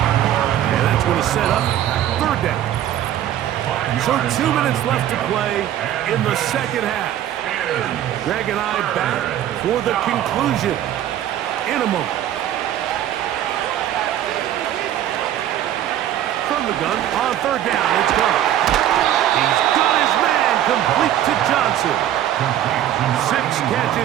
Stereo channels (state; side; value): quieter; left; 11.7 dB